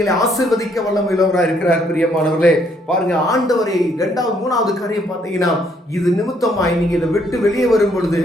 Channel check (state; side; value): normal; both; correlation 0.69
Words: ஆசீர்வதிக்க வல்லமையுள்ளவராக இருக்கிறார். பிரியமானவர்களே, பாருங்க, ஆண்டவரை 2வது 3வது காரியம் பார்த்தீங்கன்னா இது நிமித்தமாய் நீங்க இதை விட்டு வெளியே வரும் பொழுது